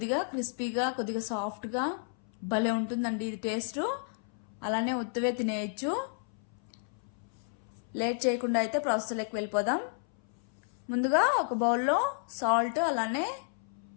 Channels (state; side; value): silent; right; 57 dB below the other